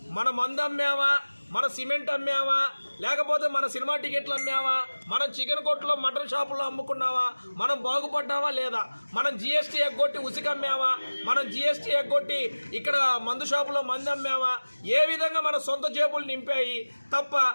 మన మందు అమ్మామా, మన సిమెంట్ అమ్మామా, లేకపోతే మన సినిమా టికెట్లు అమ్మామా, మనం చికెన్ కొట్టులో, మటన్ షాపుల్లో అమ్ముకున్నావా, మనం బాగుపడ్డావా లేదా, మనం జిఎస్టీ ఎగ్గొట్టి ఉసికి అమ్మామా, మనం జిఎస్టీ ఎగ్గొట్టి ఇక్కడ మందు షాపులో మంది అమ్మామా, ఏ విధంగా మన సొంత జేబులు నింపాయి తప్ప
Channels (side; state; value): both; inverted; correlation -1.00